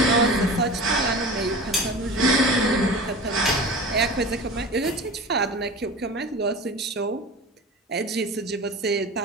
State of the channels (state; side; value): normal; both; correlation 0.34